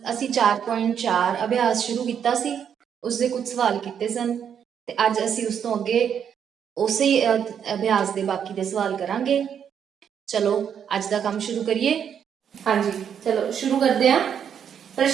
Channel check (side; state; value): left; quieter; 8.2 dB